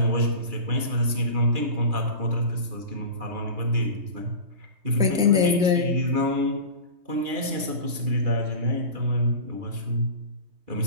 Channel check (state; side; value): late; left; 3.2 ms